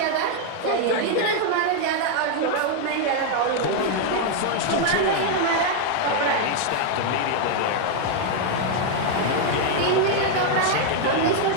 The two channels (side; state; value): both; different; correlation 0.00